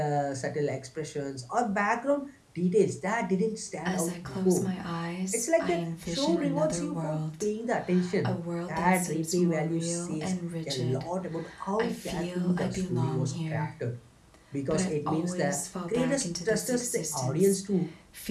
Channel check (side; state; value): both; identical; correlation 1.00